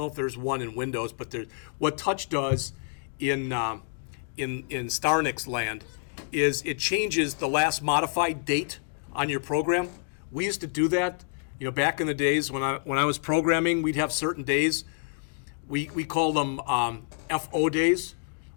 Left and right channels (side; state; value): right; silent; digital silence